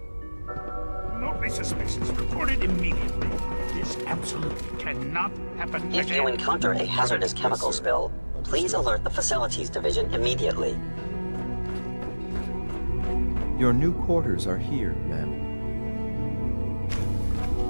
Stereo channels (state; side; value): inverted; both; correlation -1.00